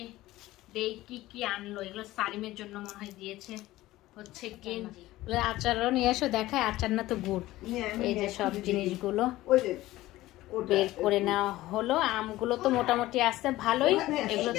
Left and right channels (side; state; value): right; quieter; 16.8 dB